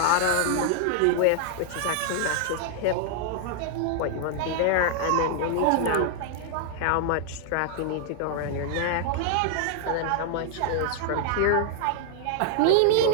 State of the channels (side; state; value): both; different; correlation -0.01